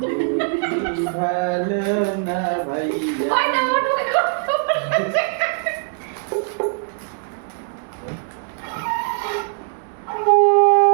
ভালো না ভাই কই না ওটু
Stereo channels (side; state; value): left; silent; digital silence